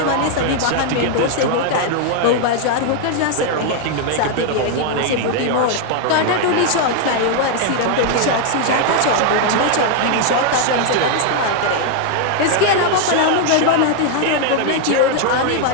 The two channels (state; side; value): different; both; correlation 0.00